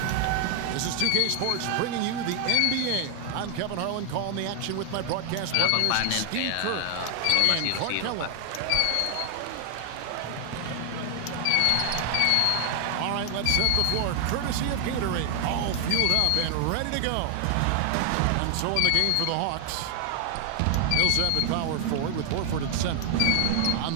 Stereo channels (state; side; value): different; both; correlation 0.00